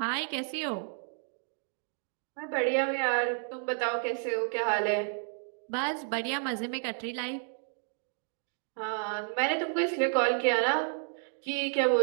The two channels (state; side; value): silent; left; 57 dB below the other